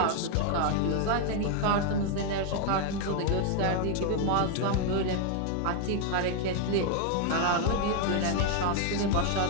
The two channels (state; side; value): different; both; correlation 0.01